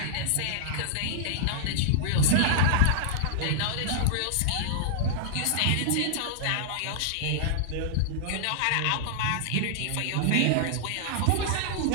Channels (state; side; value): different; both; correlation -0.01